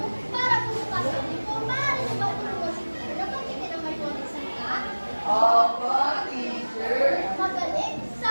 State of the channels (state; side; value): inverted; both; correlation -1.00